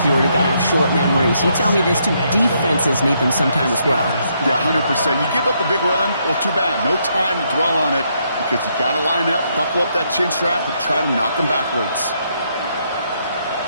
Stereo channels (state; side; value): inverted; both; correlation -0.75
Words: Huard, who got to have short memories. You tell me this too, defenses need them sometime as well. Yeah, 100%. You give up a big run, well, too bad. No time to dwell on it because you got to line up, buckle up that chin strap, and try to knock them backwards.